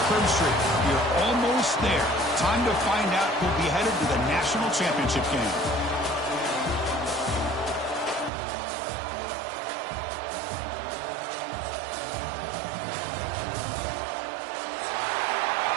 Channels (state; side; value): drops out; left; at 8.3 s